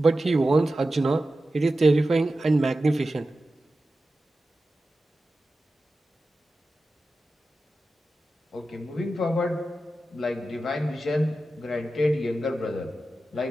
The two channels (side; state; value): both; normal; correlation 0.93